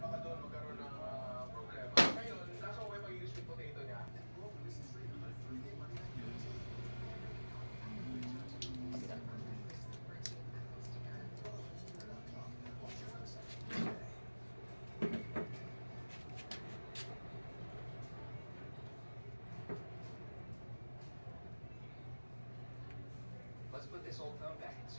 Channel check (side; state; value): both; inverted; correlation -1.00